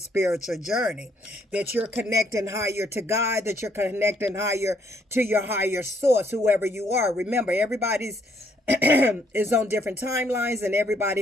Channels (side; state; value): both; normal; correlation 0.69